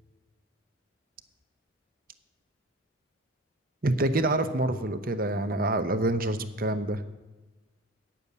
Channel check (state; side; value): normal; both; correlation 0.37